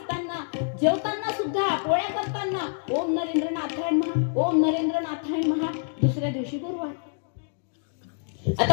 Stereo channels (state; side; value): silent; right; digital silence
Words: जेवताना सुद्धा, पोळ्या करताना ओम नरेंद्र नाथाय नमः, ओम नरेंद्र नाथाय नमः. दुसऱ्या दिवशी गुरुवार.